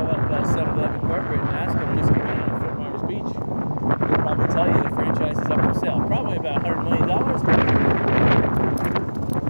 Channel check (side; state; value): both; inverted; correlation -1.00